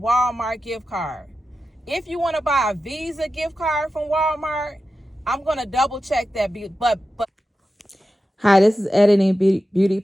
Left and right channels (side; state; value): both; normal; correlation 0.92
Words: gift card. If you want to buy a Visa gift card from Walmart, I'm going to double check that. But Hi, this is Editing Beauty